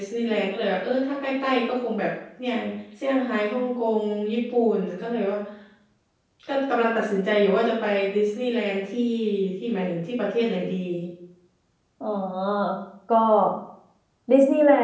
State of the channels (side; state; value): both; identical; correlation 1.00